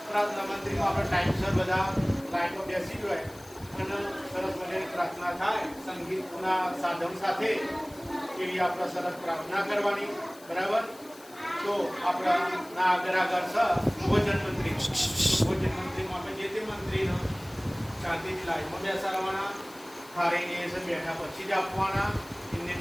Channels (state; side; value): noise; left; hiss, 22 dB below the sound